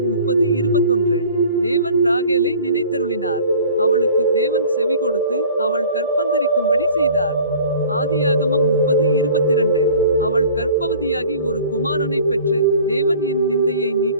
30:21. தேவன் ராகேலை நினைத்தருளினார். அவளுக்கு தேவன் செவி கொடுத்து அவள் கற்பந்தரிக்கும்படி செய்தார். ஆதியாகமம் 30:22. அவள் கர்ப்பவதியாகி ஒரு குமாரனை பெற்று தேவன் என் நிந்தையை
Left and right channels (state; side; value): inverted; both; correlation -0.47